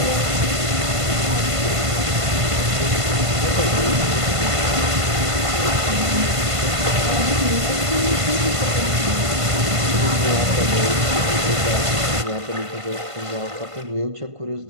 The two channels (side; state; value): left; late; 1.5 ms